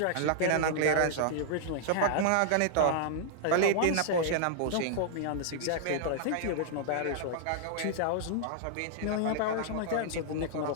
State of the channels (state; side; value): different; both; correlation -0.01